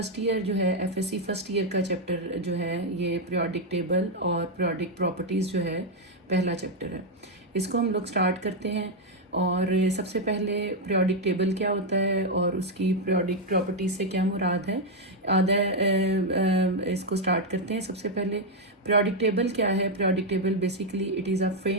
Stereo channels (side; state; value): both; normal; correlation 0.02